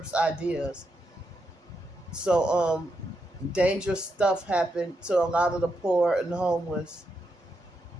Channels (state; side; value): normal; both; correlation 0.83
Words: ideas. So dangerous stuff happened to a lot of the poor and homeless.